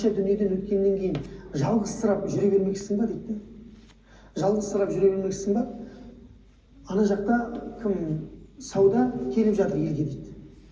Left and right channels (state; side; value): identical; both; correlation 1.00